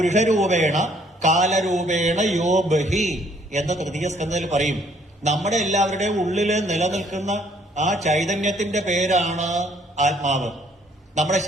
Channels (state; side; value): normal; both; correlation 0.64